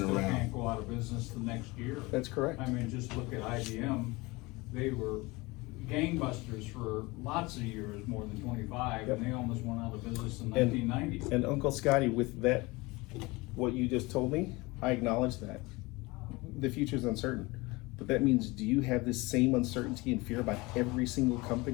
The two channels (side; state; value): right; quieter; 23.3 dB